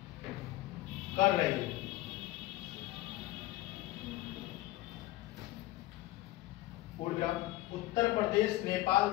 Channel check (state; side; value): quieter; right; 17.1 dB